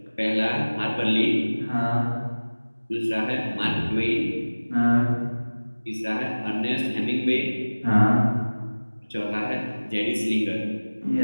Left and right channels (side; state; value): both; inverted; correlation -1.00